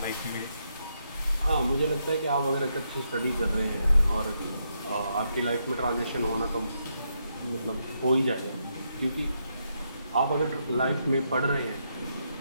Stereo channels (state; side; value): inverted; both; correlation -0.80